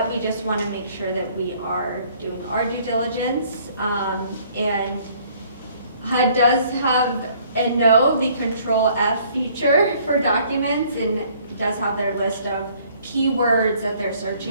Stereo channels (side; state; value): both; inverted; correlation -0.60